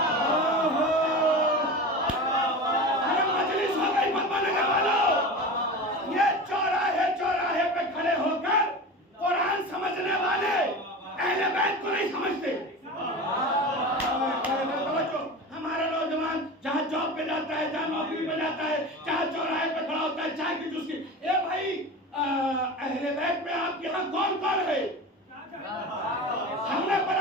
ارے مجلس ہو گئی پدما نگر والوں. یہ چوراہے چوراہے پہ کھڑے ہو کر قرآن سمجھنے والے اہل بیت کو نہیں سمجھتے. ہمارا نوجوان جہاں جاب پہ جاتا ہے, جہاں نوکری پہ جاتا ہے, جہاں چوراہے پہ کھڑا ہوتا ہے چائے کی جوس کی, اے بھائی اہل بیت میں آپ کے ہاں کون کون ہے؟ ہم نے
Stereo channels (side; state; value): both; normal; correlation 0.30